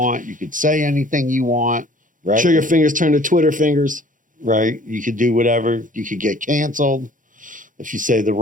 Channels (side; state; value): left; late; 0.38 ms